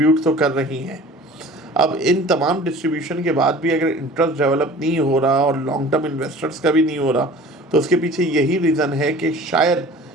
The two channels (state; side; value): normal; both; correlation 0.44